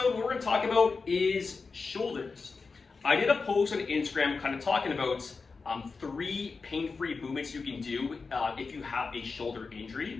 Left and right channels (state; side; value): quieter; right; 4.5 dB